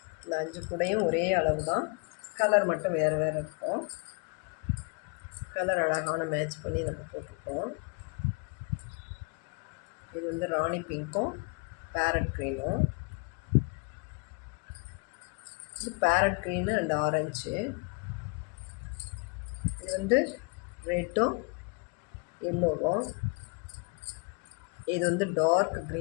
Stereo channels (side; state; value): right; quieter; 31.9 dB